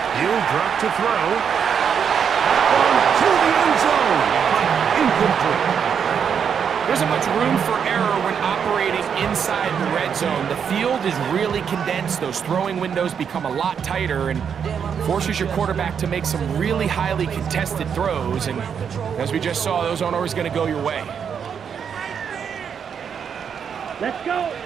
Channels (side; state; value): left; quieter; 7.3 dB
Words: He'll drop to throw. To the end zone, but incomplete. There isn't much room for error when operating inside the red zone. The field is really condensed. Those throwing windows become a lot tighter and forces your quarterback to make some really highly contested throws. And as we just saw, those aren't always going to go your way. Let's go.